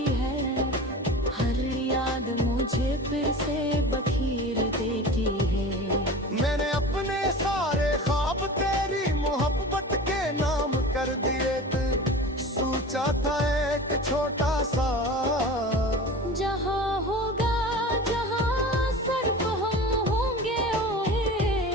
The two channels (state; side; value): normal; both; correlation 0.35